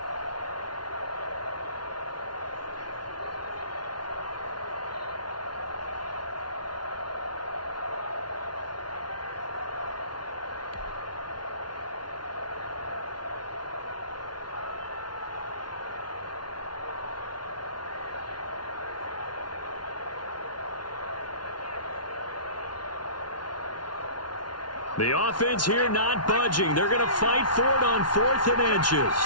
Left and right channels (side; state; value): right; late; 0.70 ms